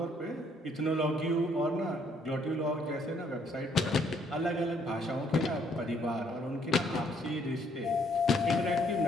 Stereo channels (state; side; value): normal; both; correlation 0.67